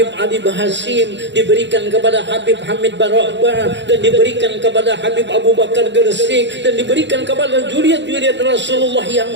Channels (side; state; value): left; late; 0.52 ms